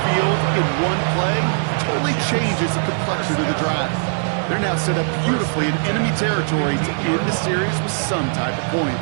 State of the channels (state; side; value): silent; left; digital silence